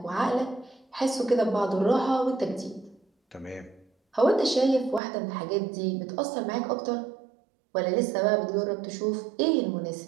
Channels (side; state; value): left; drops out; at 5.0 s